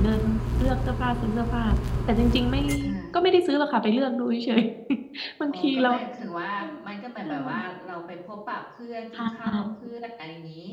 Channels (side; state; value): both; identical; correlation 1.00